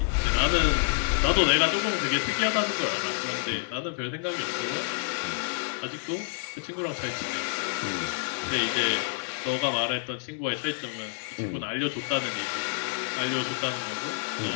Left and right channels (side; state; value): right; silent; digital silence